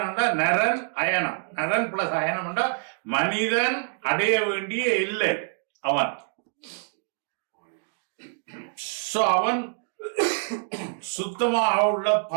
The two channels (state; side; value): silent; left; digital silence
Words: நரன் அயனம். நரன் பிளஸ் அயனம் மனிதன் அடைய வேண்டிய இல்லை அவன். அவன் சுத்தமாக உள்ள